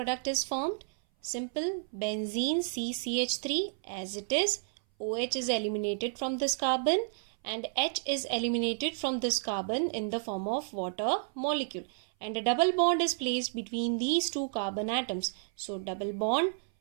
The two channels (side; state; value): left; silent; 57 dB below the other